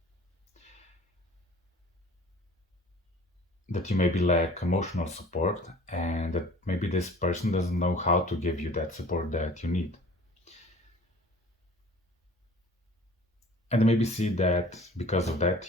that you maybe lack emotional support, and that maybe this person doesn't know how to give you that support that you need. And they maybe see that because of that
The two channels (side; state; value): both; normal; correlation 0.47